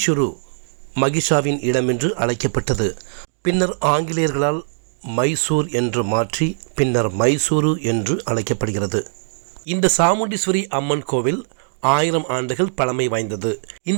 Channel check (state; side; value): silent; left; digital silence